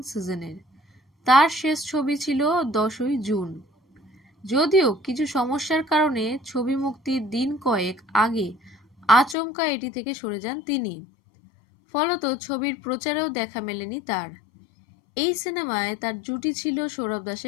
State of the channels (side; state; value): right; drops out; at 9.3 s